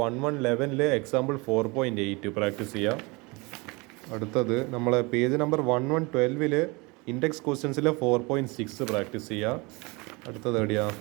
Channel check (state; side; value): quieter; left; 26.5 dB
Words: 1111-ലെ എക്സാമ്പിൾ 4.8 പ്രാക്ടീസ് ചെയ്യുക. അടുത്തത് നമ്മളെ പേജ് നമ്പർ 1112-ൽ ഇൻഡെക്സ് ക്വസ്റ്റ്യൻസിലെ 4.6 പ്രാക്ടീസ് ചെയ്യുക. അടുത്തത് എവിടെയാ